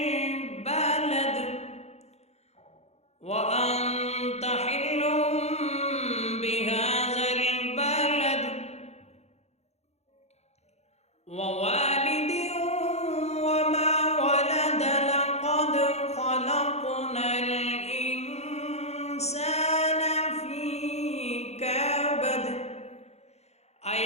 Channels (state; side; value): late; right; 0.31 ms